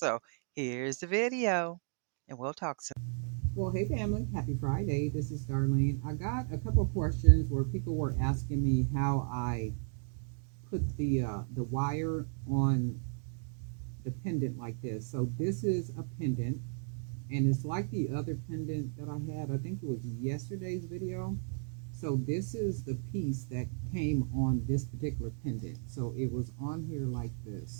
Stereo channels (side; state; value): left; silent; 55 dB below the other